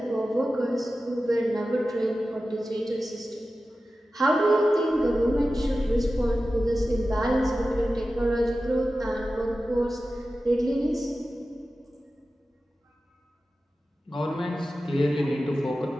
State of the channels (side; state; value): both; normal; correlation 0.94